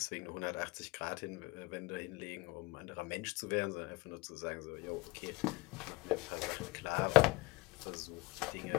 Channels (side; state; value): right; quieter; 22.8 dB